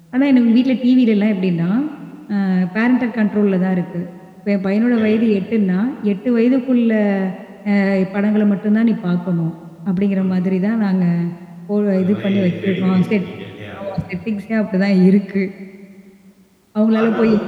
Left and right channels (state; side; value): identical; both; correlation 1.00